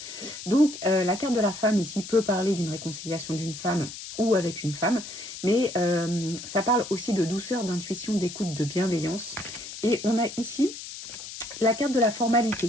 Donc, la carte de la femme ici peut parler d'une réconciliation d'une femme ou avec une femme, mais ça parle aussi de douceur, d'intuition, d'écoute, de bienveillance. Et on a ici la carte de la formalité.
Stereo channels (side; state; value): left; noise; hiss, 11 dB below the sound